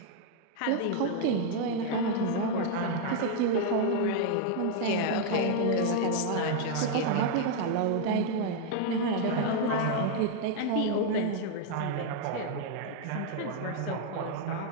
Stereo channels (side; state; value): both; different; correlation 0.00